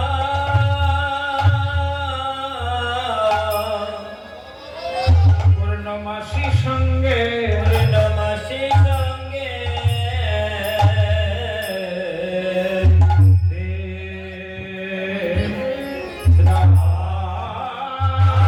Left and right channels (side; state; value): both; identical; correlation 1.00